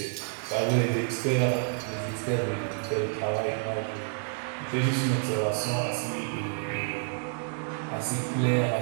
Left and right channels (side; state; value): left; silent; 56 dB below the other